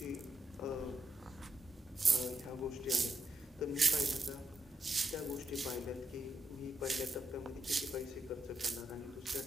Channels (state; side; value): normal; both; correlation 0.82